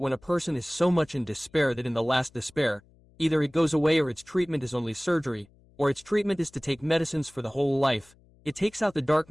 a person is so much in despair that in the last despair, either it goes away or its treatment is only surgery, or its treatment is to take medicines for the whole life, it takes out the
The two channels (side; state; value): left; noise; hum, 29 dB below the sound